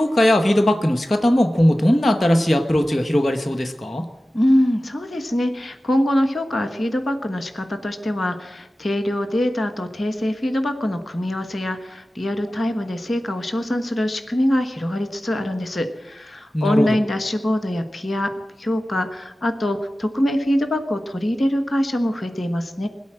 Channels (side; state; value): both; normal; correlation 0.95